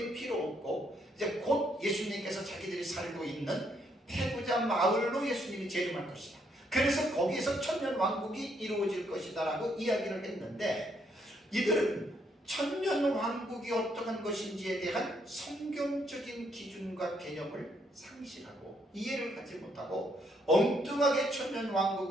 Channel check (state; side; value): normal; both; correlation 0.73